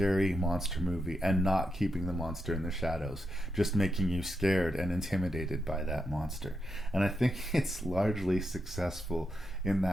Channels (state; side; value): normal; both; correlation 0.84